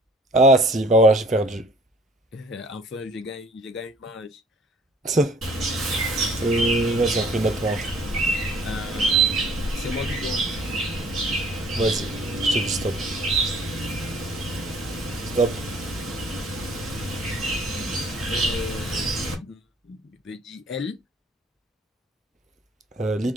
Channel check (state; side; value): normal; both; correlation 0.55